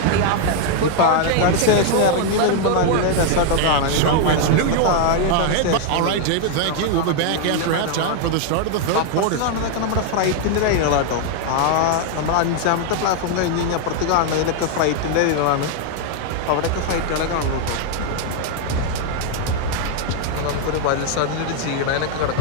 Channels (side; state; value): both; different; correlation 0.00